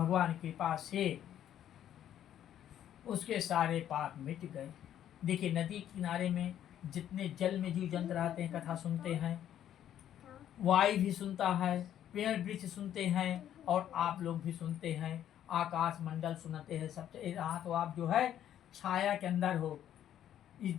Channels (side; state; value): right; quieter; 10.8 dB